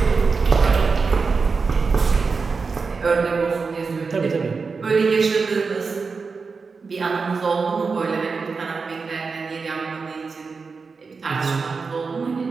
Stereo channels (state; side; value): quieter; left; 4.7 dB